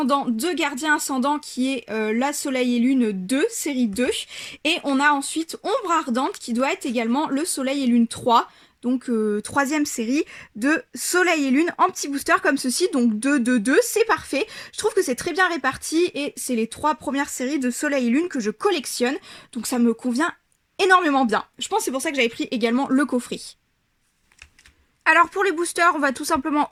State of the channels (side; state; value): both; identical; correlation 1.00